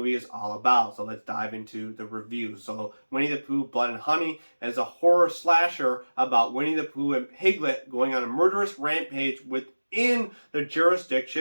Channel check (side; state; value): both; inverted; correlation -1.00